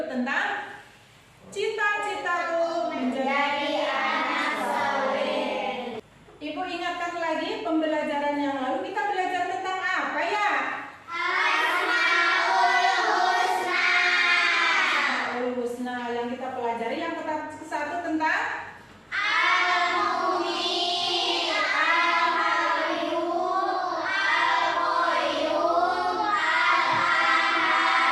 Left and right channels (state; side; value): identical; both; correlation 1.00